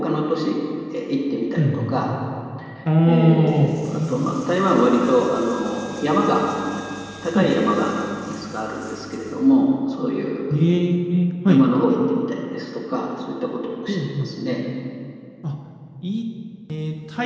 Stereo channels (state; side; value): identical; both; correlation 1.00